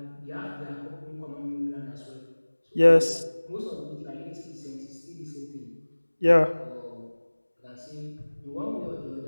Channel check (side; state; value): both; inverted; correlation -1.00